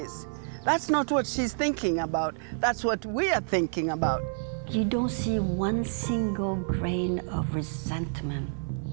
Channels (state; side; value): silent; left; 59 dB below the other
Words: That's not what she's thinking about. That's what we are thinking about. You don't see one single grain of resentment,